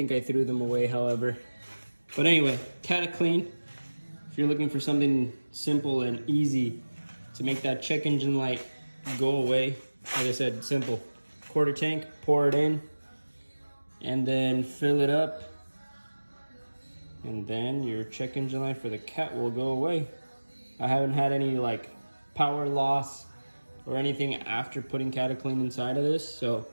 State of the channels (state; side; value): inverted; both; correlation -1.00